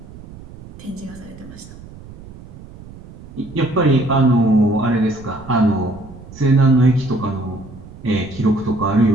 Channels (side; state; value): right; noise; rumble, 18 dB below the sound